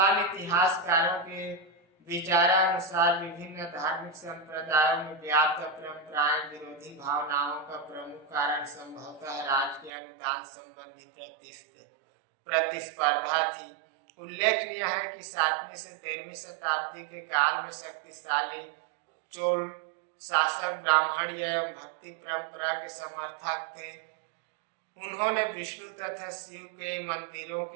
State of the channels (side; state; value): left; drops out; at 9.9 s